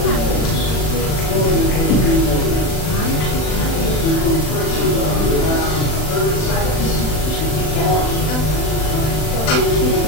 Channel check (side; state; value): right; late; 39 ms